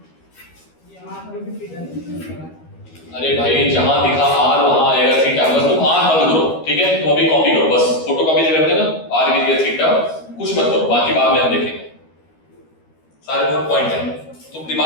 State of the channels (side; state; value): right; late; 13 ms